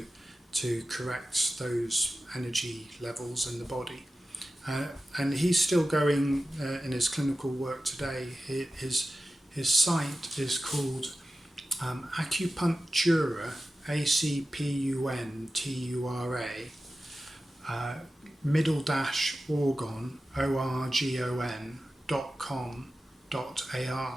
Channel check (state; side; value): normal; both; correlation 0.94